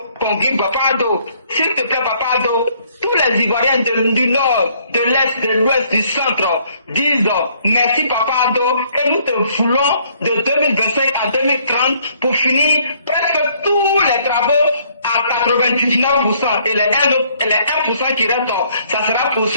s'il te plaît, Papado, tous les Ivoiriens du Nord, de l'Est, de l'Ouest, du Centre disent merci Papado et nous te voulons de 2025 à 2030 pour finir presque tous les travaux à 99% et les 1% qui restent, ça sera pour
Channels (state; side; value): inverted; both; correlation -0.65